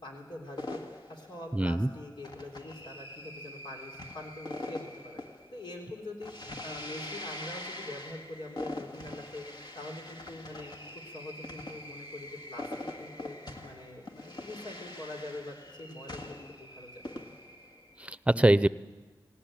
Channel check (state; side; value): normal; both; correlation 0.86